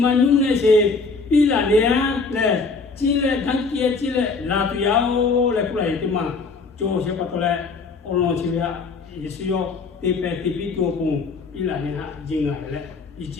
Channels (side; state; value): right; quieter; 4.3 dB